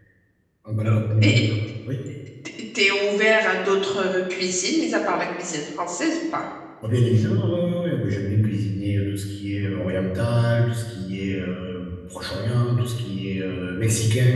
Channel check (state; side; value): identical; both; correlation 1.00